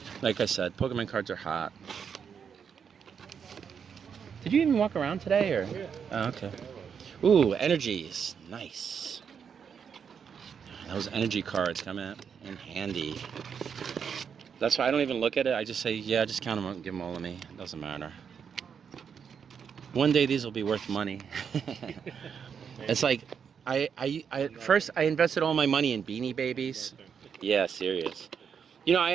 Like I said, Pokemon cards are hot. Did you even walk around today, or? Yeah. Oh, okay. Ooh, energies, nice. Those energy cards come in handy. That's why I don't even look at it. I just say, yeah, just count them out and give them all to me. It doesn't matter. One day these will be worth money. It's like, first I invested all my money in Beanie Babies. Yeah, serious. You know, I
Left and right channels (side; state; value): left; quieter; 7.0 dB